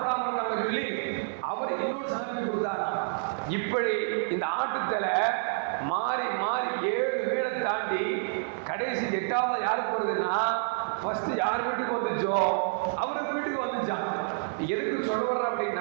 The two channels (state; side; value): silent; left; 59 dB below the other